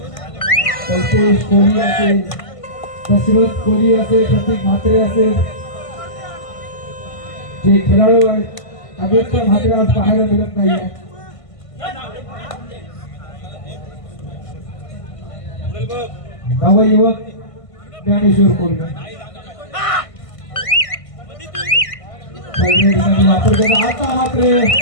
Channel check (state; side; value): late; right; 1.5 ms